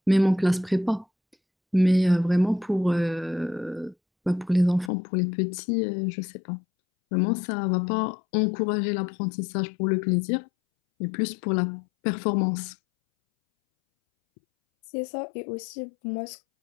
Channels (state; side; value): drops out; right; at 4.9 s